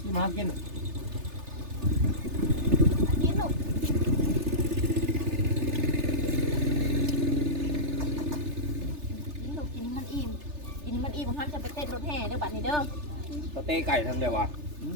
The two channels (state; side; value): late; left; 3.3 ms